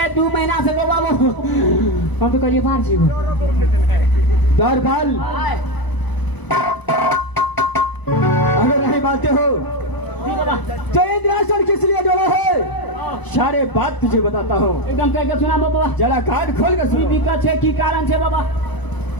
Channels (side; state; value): right; late; 1.0 ms